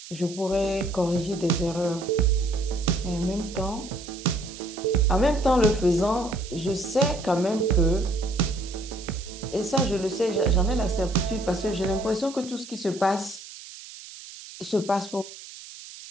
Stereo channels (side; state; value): right; noise; hiss, 15 dB below the sound